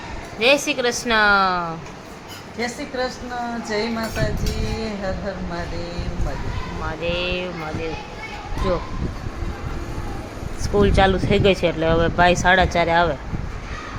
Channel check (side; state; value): both; identical; correlation 1.00